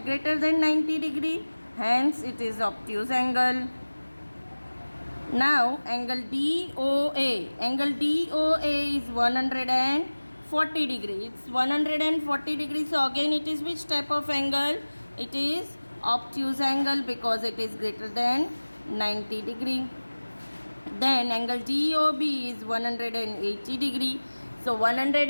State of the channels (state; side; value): inverted; both; correlation -1.00